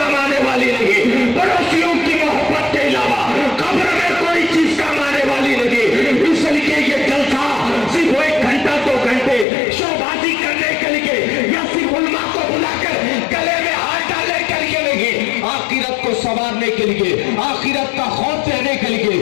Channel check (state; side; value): drops out; right; at 9.5 s